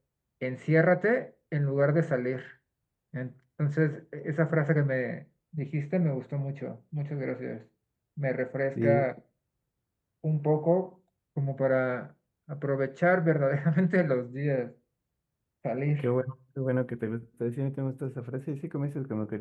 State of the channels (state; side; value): identical; both; correlation 1.00